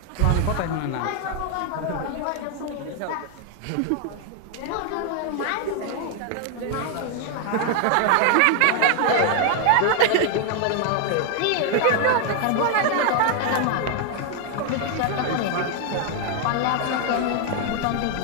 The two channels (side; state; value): both; different; correlation 0.00